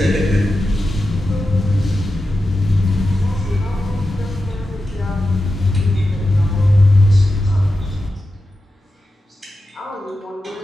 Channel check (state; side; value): normal; both; correlation 0.91